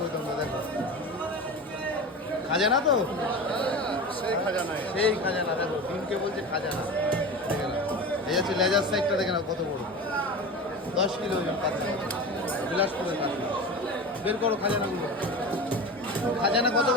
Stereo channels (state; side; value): normal; both; correlation 0.29